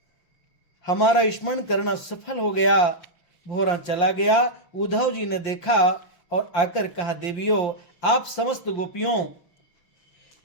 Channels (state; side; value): late; right; 5.7 ms